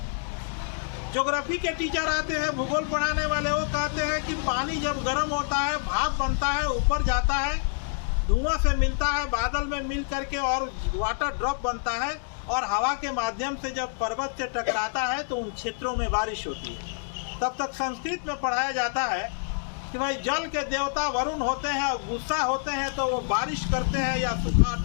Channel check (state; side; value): silent; right; digital silence